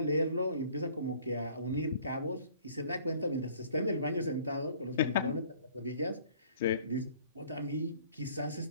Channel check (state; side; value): inverted; both; correlation -0.54